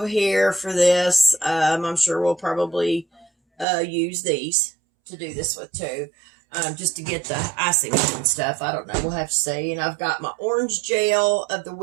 here for this. I'm sure we'll probably use these to do this with too. Just to get the icing and stuff. I don't know. We'll have to see. And I've got my orange gel of the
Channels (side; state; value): left; drops out; at 3.7 s